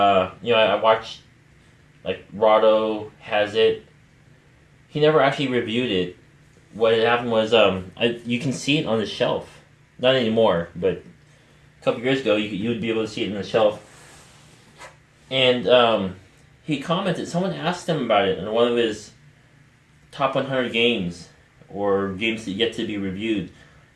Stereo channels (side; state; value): both; identical; correlation 1.00